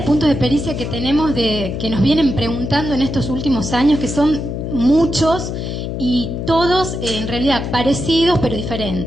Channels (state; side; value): noise; left; hum, 4 dB below the sound